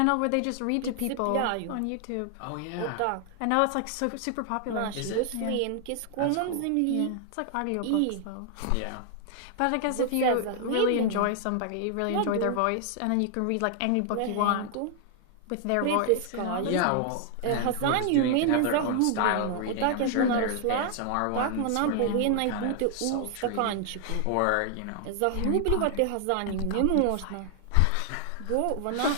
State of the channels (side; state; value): both; different; correlation 0.00